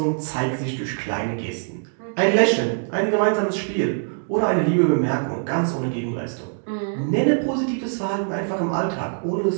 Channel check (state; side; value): silent; left; 63 dB below the other